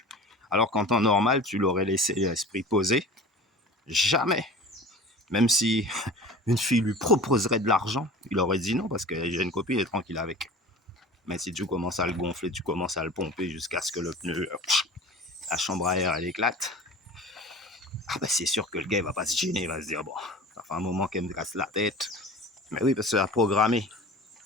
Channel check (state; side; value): normal; both; correlation 0.39